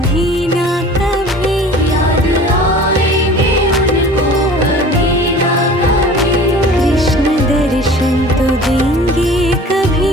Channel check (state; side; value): normal; both; correlation 0.43